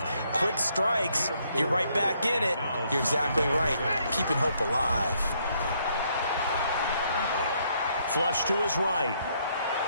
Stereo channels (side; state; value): both; inverted; correlation -0.71